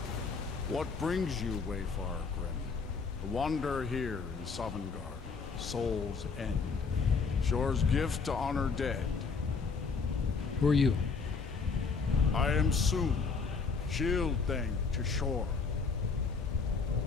What brings you, Wayfarer Grim? To wander here in Sovngarde, Soul's End. Shore's gift to honor dead. Who are you? I am Soon, shield thing to Shore.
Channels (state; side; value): quieter; right; 4.9 dB